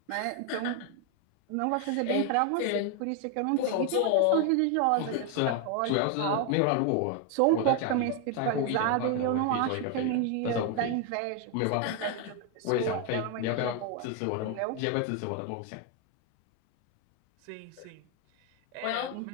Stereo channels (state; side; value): different; both; correlation 0.01